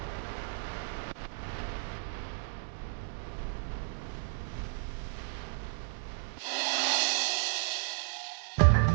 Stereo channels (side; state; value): left; silent; digital silence